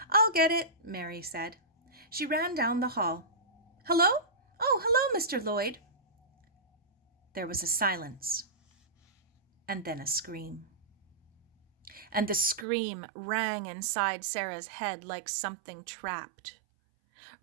"I'll get it," Mary said. She ran down the hall. "Hello? Oh, hello, Mr. Lloyd." There was a silence, and then a scream. And the scream rang inside Sara's head like something trapped,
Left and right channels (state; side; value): drops out; left; at 12.7 s